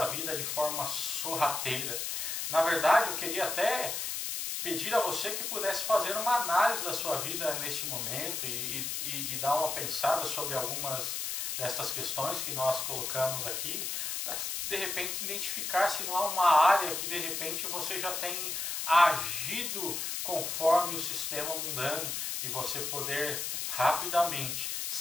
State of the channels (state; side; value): noise; left; hiss, 2 dB below the sound